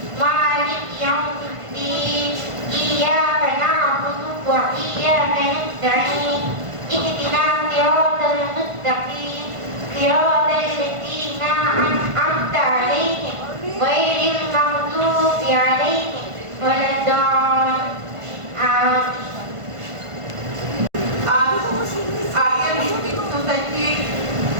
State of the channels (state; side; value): late; left; 1.5 ms